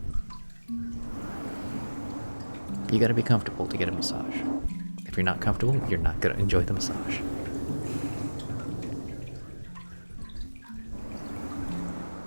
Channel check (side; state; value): both; inverted; correlation -1.00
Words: You got to be comfortable to get a massage. If you're not comfortable, you're not going to enjoy the massage.